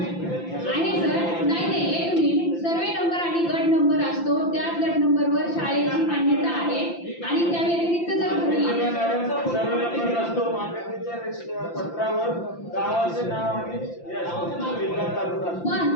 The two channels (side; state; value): right; late; 5.8 ms